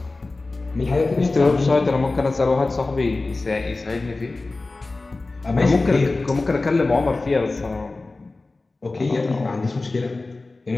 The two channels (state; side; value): quieter; right; 3.3 dB